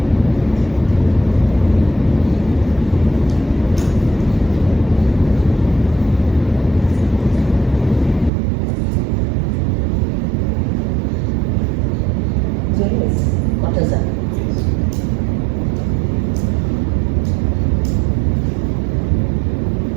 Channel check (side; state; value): left; drops out; at 8.3 s